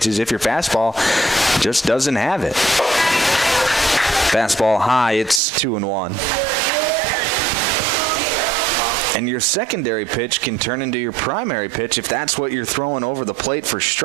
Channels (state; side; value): drops out; left; at 5.4 s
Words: if your fastball just doesn't have it. Fastball high. It's 2-1. And your secondary pitch can turn into your primary pitch if that's what you're throwing over the plate for